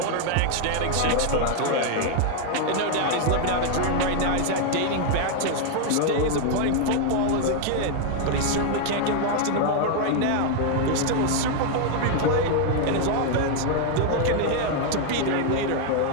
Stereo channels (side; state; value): both; different; correlation 0.00